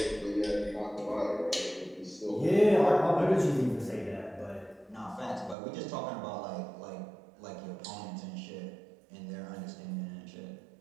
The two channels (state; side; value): drops out; left; at 5.6 s